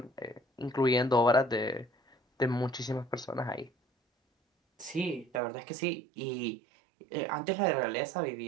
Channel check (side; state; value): left; drops out; at 5.4 s